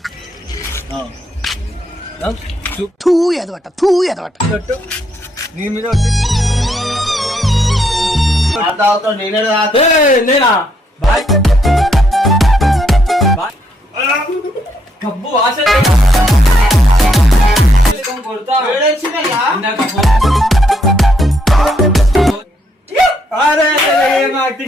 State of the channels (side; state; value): both; normal; correlation 0.75